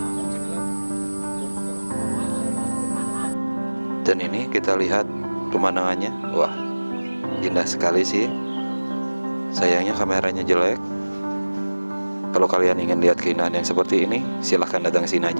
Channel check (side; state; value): both; inverted; correlation -1.00